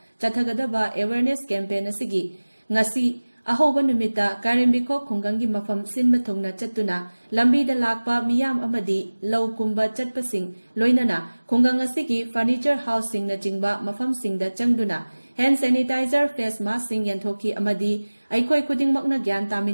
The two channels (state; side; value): inverted; both; correlation -1.00